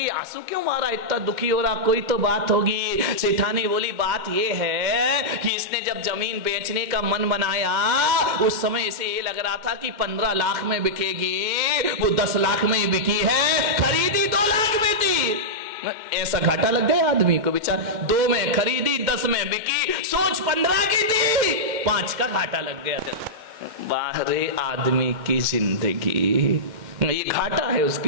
आंसू क्यों मारा, इतना दुखी हो रहा, कोई तो बात होगी। सेठानी बोली बात ये है कि इसने जब जमीन बेचने का मन बनाया उस समय इसे ये लग रहा था कि 15 लाख में बिकेगी, वो 10 लाख में ही बिकी है, खरीदी 2 लाख में थी। ऐसा घाटा लग गया आदमी को, बेचारा 2 में खरीदी 10 में बिकी, सोच 15 की थी, 5 का घाटा लग गया। बाहरे आदमी की जिंदगी, ये घाटा है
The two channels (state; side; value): late; left; 2.1 ms